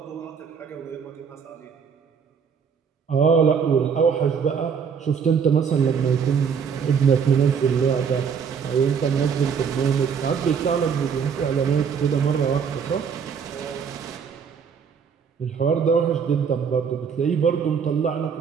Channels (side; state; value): left; quieter; 6.6 dB